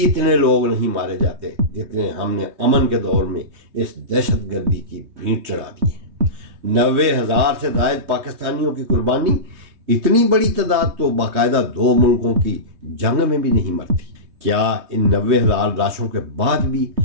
लोग नहीं मारे जाते जितने हमने अमन के दौर में इस दहशतगर्दी की भींट चढ़ा दी है। 90,000 से ज़ायद पाकिस्तानियों की कुर्बानी, इतनी बड़ी तादाद तो बाकायदा 2 मुल्कों की जंग में भी नहीं मरती। क्या इन 90,000 लाशों के बाद भी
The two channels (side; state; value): left; late; 3.2 ms